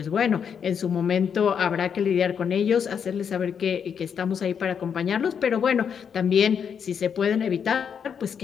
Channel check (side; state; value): right; quieter; 7.3 dB